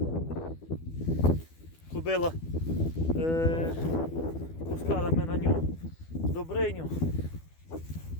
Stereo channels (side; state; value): right; late; 12 ms